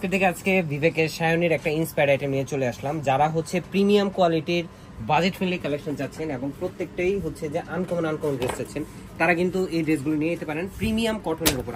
থেকে আজকে বিবেকের সায়নের একটা ইন্সপায়ার্ড আইটেম নিয়ে চলে আসলাম। যারা হচ্ছে প্রিমিয়াম কোয়ালিটির বাজেট ফ্রেন্ডলি কালেকশন চাচ্ছেন এবং প্রত্যেকটাই হচ্ছে যে আনকমন ড্রেস চাচ্ছেন, তারা কিন্তু এই ড্রেসগুলো নিয়ে যেতে পারেন প্রিমিয়াম কটনের উপর।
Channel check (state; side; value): identical; both; correlation 1.00